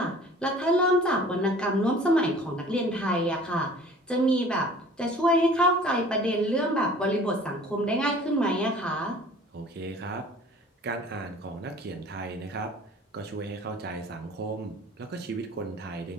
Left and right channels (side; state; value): both; normal; correlation 0.48